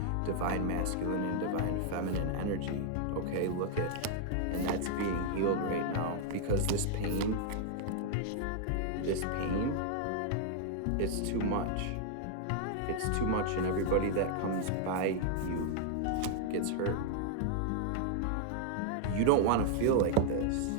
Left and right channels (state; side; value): different; both; correlation 0.00